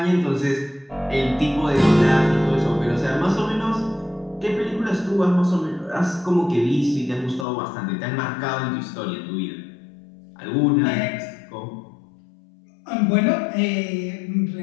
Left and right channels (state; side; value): drops out; right; at 7.5 s